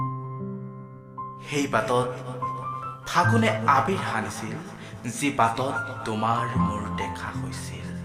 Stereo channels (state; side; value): identical; both; correlation 1.00